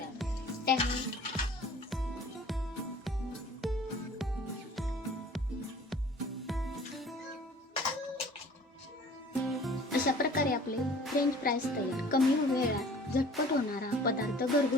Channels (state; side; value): normal; both; correlation 0.49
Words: अशा प्रकारे आपले फ्रेंच फ्राईज तयार. कमी वेळात झटपट होणारा पदार्थ,